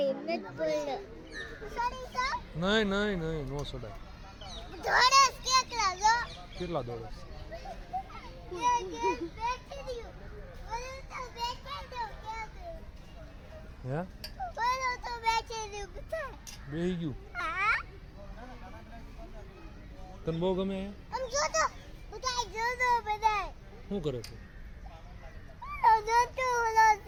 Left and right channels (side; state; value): both; identical; correlation 1.00